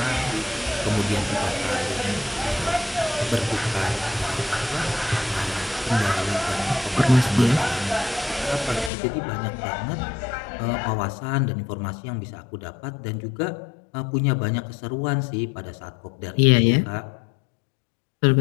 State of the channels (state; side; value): drops out; right; at 8.9 s